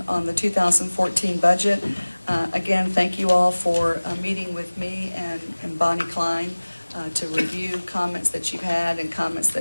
on the 2014 budget. Again, thank you all for meeting with me and Bonnie Klein to review comments that you've had and comments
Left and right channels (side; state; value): both; inverted; correlation -1.00